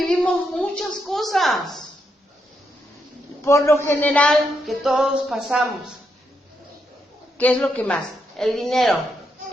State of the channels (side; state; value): both; normal; correlation 0.80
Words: muchas cosas, por lo general, que todos pasamos. ¿Qué es lo que más? El dinero,